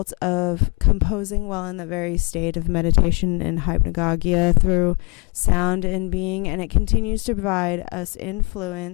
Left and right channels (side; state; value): right; quieter; 30.5 dB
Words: of composing while in the very state of meditation and hypnagogia through sound and being, and it continues to provide us